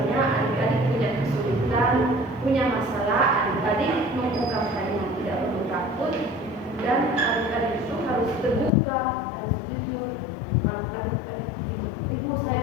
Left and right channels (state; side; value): drops out; right; at 8.7 s